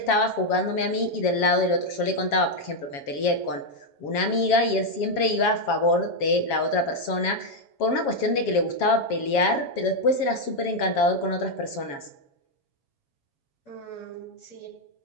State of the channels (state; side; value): late; right; 7.3 ms